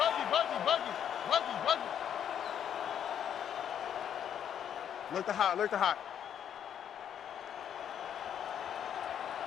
Look the hot, look the hot.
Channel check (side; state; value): right; quieter; 9.2 dB